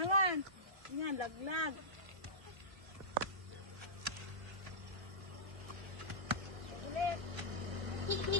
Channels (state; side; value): late; left; 1.5 ms